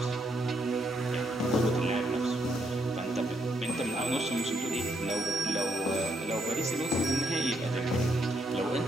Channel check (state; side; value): normal; both; correlation 0.75